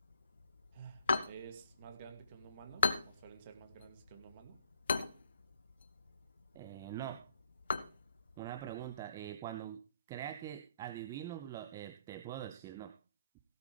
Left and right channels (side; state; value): both; inverted; correlation -0.69